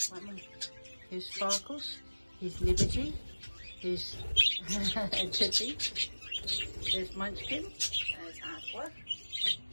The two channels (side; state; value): both; inverted; correlation -1.00